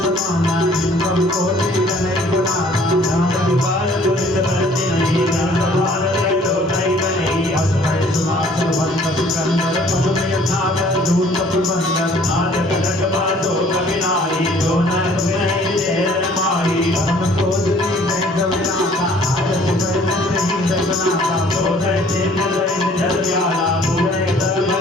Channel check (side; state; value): both; normal; correlation 0.56